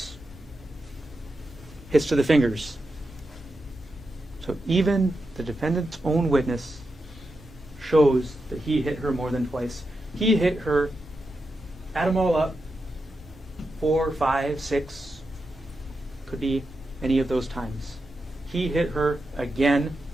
Hits to the fingers. So even the defendant's own witness shows that he hit her more than twice. He hit her, add them all up, 4, 5, 6, could be any of those times. He hit her again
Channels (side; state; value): both; normal; correlation 0.88